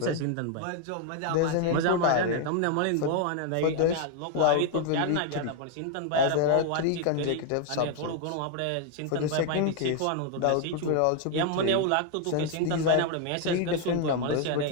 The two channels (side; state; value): both; different; correlation 0.00